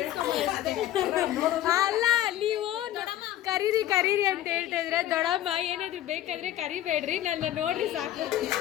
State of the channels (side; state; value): right; quieter; 13.2 dB